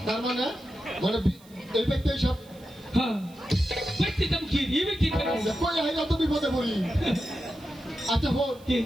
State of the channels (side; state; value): right; noise; hiss, 26 dB below the sound